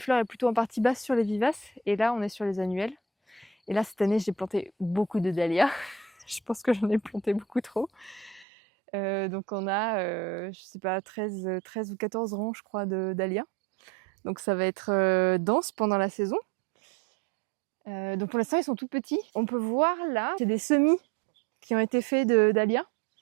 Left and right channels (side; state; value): left; drops out; at 8.5 s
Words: est plutôt en partie basse sur les vivaces, et là on est sur les annuels. Et là cette année j'ai planté beaucoup de dahlias, je pense que j'en ai planté beaucoup trop. Donc on a, je sais pas, 13 ou 14 rangs je crois de dahlias. Donc ça va être dense pendant la saison. Donc pour l'instant ils sont tout petits. On peut voir là, c'est des semis qui ont été faits de dahlias.